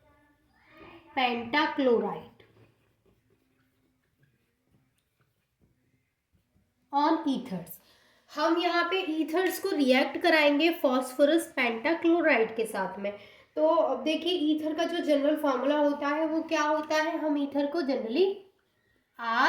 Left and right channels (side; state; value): both; identical; correlation 1.00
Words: pentachloride on ethers. हम यहाँ पे ईथर्स को रिएक्ट कराएंगे फॉस्फोरस पेंटाक्लोराइड के साथ में। तो अब देखिए ईथर का जो जनरल फार्मूला होता है वो क्या होता है, हम ईथर को जनरली